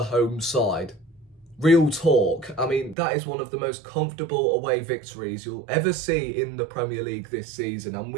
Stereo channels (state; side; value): drops out; left; at 3.0 s